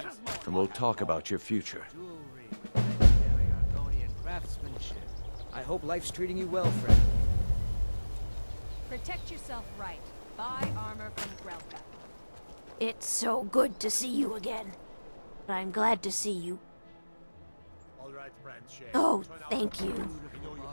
and we'll talk about your future. I hope life's treating you well, friend. Protect yourself right. Buy armor from Grelka. It's so good to see you again. I'm glad to see you. Oh, thank you.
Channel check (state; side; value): inverted; both; correlation -1.00